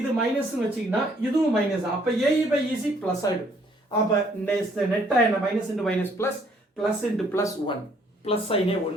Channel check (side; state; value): both; normal; correlation 0.64